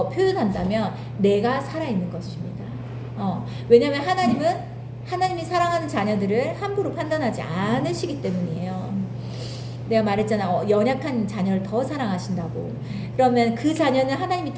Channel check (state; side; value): identical; both; correlation 1.00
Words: 표현한다면 내가 살아있는 것입니다. 왜냐하면 하나님이 사랑하는 자녀들을 함부로 판단하지 않으시기 때문이에요. 내가 말했잖아. 연약한 자녀를 더 사랑하신다고. 그러면 그 자녀는 하나님이